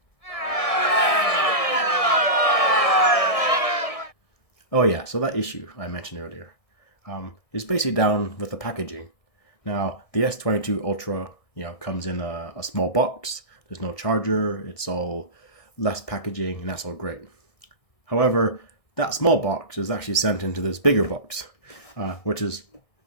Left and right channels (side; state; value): right; late; 1.6 ms